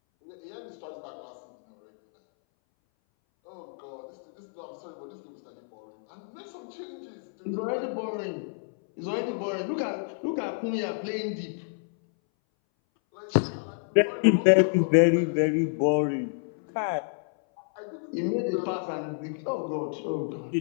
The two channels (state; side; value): silent; right; 59 dB below the other